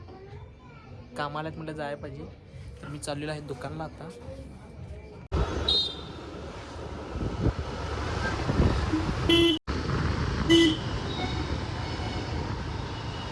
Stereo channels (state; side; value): identical; both; correlation 1.00